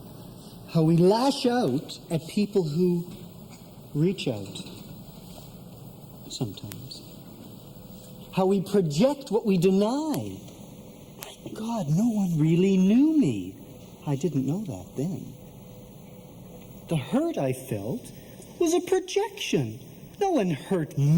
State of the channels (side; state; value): both; identical; correlation 1.00